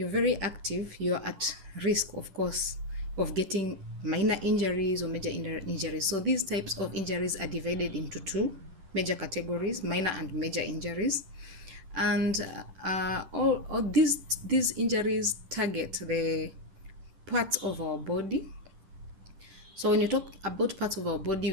very active, you're at risk, of course, of getting minor injuries or major injuries. So these types of injuries are divided into two major categories: minor and major injuries. And all these injuries target the parts of our body. So when you talk about parts of our body,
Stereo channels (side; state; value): left; late; 10 ms